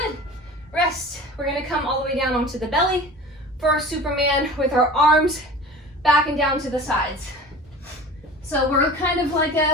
Rest. We're gonna come all the way down onto the belly for our Superman with our arms back and down to the sides. So we're kind of like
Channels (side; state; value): both; normal; correlation 0.39